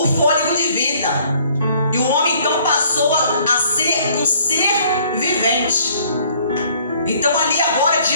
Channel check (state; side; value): inverted; both; correlation -0.59